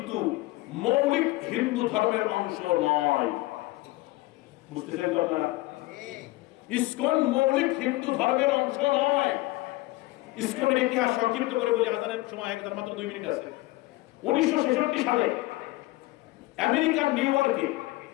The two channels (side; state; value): right; quieter; 19.8 dB